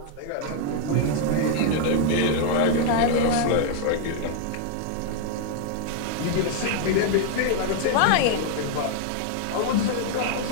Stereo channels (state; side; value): different; both; correlation 0.00